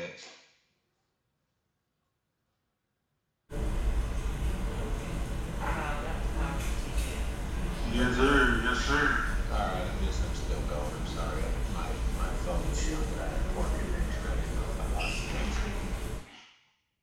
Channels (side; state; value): both; identical; correlation 1.00